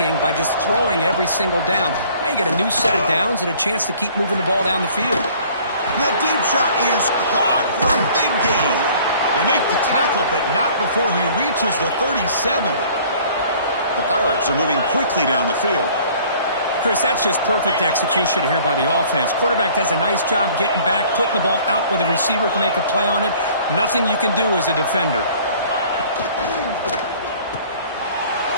by just throwing every single down. Now you got a new set of downs and a chance to keep moving the ball down the field. That deep shot is caught for a big gain. They make the tackle, but not before he reaches the 37. The Pirates are moving quickly down the field. Chris, that's just perfect execution here by the offense. Quarterback does a nice job getting back, putting the ball out where the receiver can make a play on it. Nothing you can do as a defender.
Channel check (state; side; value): inverted; both; correlation -0.53